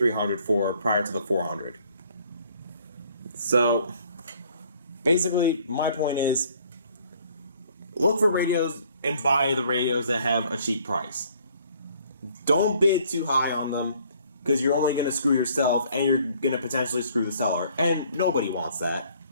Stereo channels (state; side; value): inverted; both; correlation -0.60